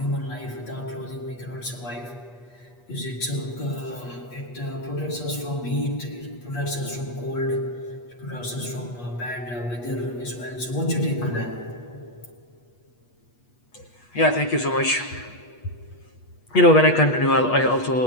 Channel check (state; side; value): late; right; 8.3 ms